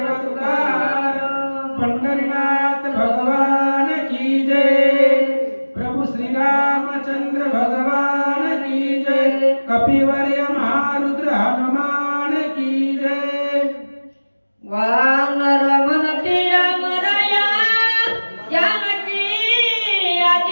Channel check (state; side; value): inverted; both; correlation -1.00